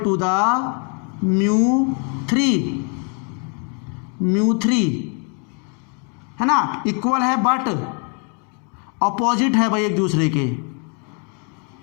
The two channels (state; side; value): quieter; right; 38.8 dB